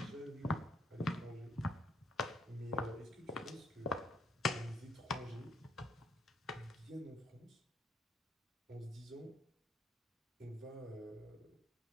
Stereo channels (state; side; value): normal; both; correlation 0.69